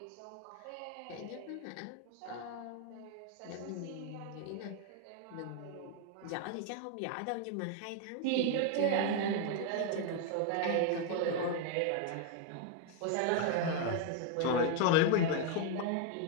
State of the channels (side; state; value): both; different; correlation 0.00